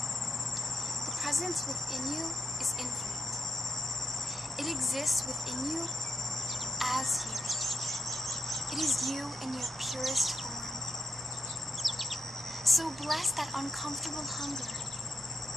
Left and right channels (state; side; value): normal; both; correlation 0.83